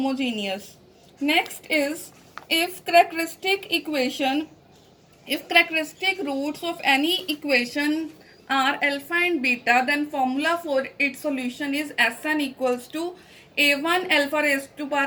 Next is, if characteristic roots of any equation are alpha and beta, then formula for its solution is Sn equals to a1 alpha raised to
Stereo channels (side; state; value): both; identical; correlation 1.00